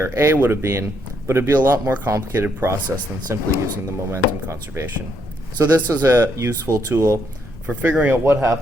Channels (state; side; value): normal; both; correlation 0.75